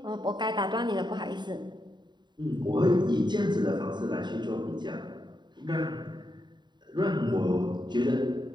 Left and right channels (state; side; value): late; left; 0.22 ms